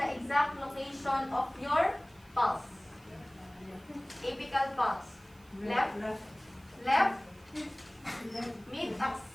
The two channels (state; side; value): noise; right; hiss, 28 dB below the sound